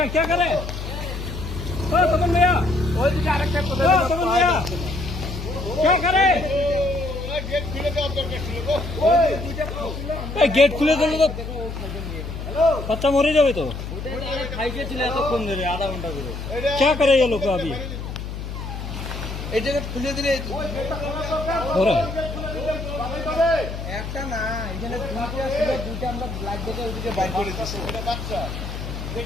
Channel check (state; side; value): noise; left; hum, 7 dB below the sound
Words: गेट खुले दिल तो बच्चा मरे जाए तो आधा घंटा क्या करे ये लोग अभी खुले दिले একটা না এখানে দুইটা আমরা ব্ল্যাক দেখে ওইদিকে বাইর করে দিছি বাচ্চা